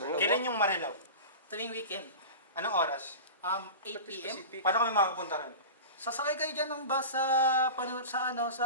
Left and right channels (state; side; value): inverted; both; correlation -0.31